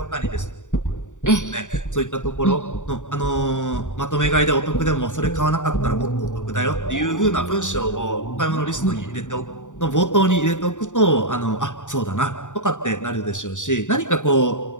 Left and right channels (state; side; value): late; right; 0.86 ms